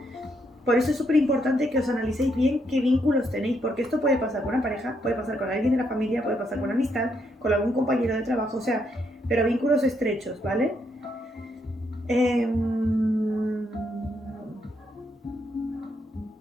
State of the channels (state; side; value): normal; both; correlation 0.76